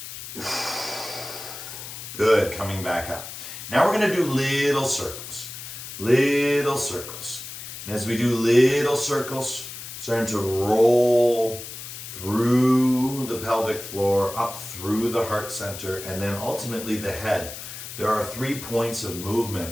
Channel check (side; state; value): left; noise; hiss, 11 dB below the sound